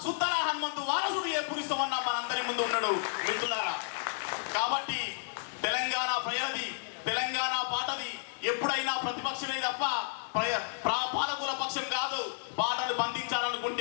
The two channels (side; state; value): right; silent; 55 dB below the other